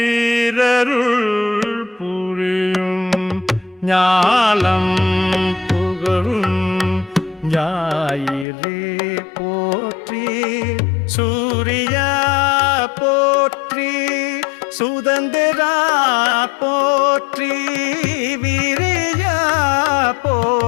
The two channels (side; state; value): right; drops out; at 8.5 s